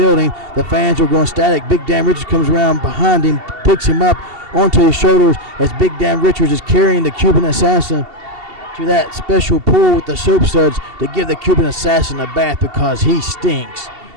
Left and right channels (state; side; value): late; left; 2.7 ms